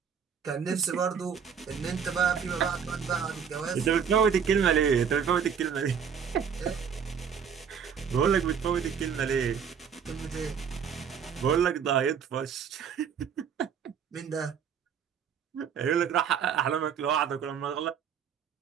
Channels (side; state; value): left; quieter; 7.3 dB